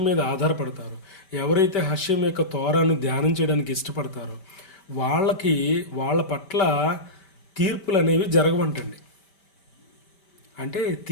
మీద ఆధారపడతారో, ఎవరైతే హష్యం యొక్క తోరాను ధ్యానం చేయడానికి ఇష్టపడతారో వాళ్ళ పట్ల తీర్పులు అనేవి జరగవంటండి. అంటే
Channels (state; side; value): late; right; 5.1 ms